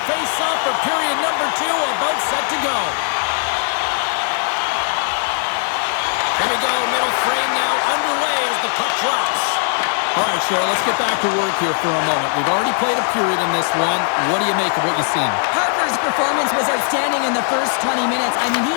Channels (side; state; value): right; silent; 62 dB below the other